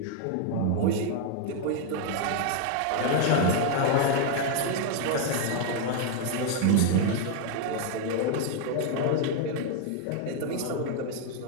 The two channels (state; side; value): different; both; correlation 0.00